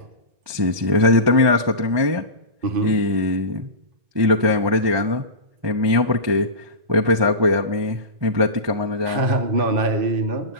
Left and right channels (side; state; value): left; late; 1.2 ms